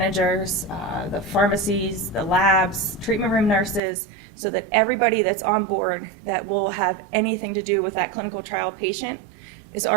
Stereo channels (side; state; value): left; drops out; at 3.8 s